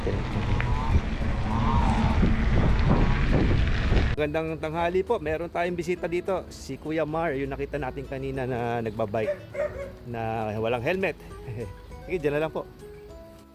Magandang tanghali po. Meron tayong bisita dito. Si Kuya Mar, yung nakita natin kanina na nagbabike na walang helmet. Sige, dyan na lang po.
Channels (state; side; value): identical; both; correlation 1.00